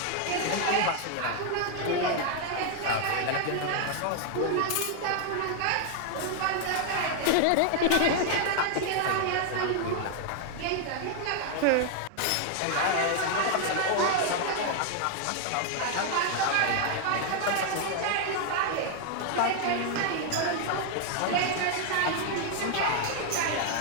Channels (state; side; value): different; both; correlation 0.00